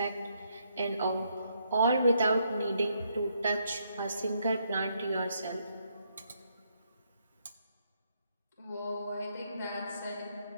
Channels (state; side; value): inverted; both; correlation -0.75